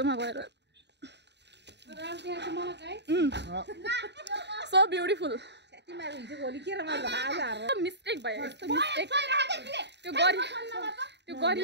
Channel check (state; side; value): late; left; 0.50 ms